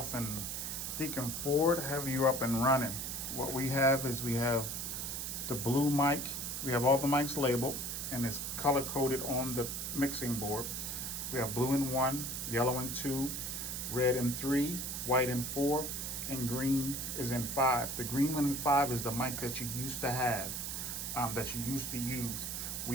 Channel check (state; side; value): noise; right; hiss, 4 dB below the sound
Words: and Deacon Ford have you up and running. What we have is we have the blue mic. We have all the mics labeled and it's color coded on the mixing board. We have blue in 1, yellow in 2, red in 3, white in 4, and green is in 5. The green one in 5 is the mic that you used to have, that you used to use.